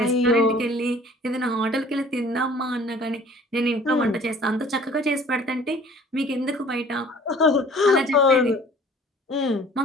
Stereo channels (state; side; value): normal; both; correlation 0.51